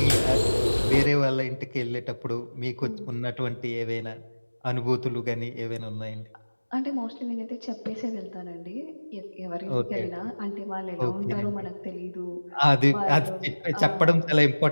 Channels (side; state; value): both; inverted; correlation -1.00